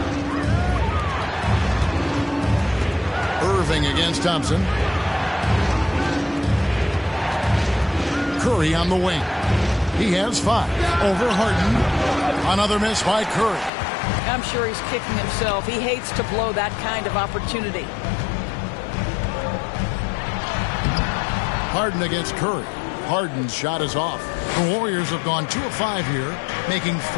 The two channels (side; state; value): right; drops out; at 13.7 s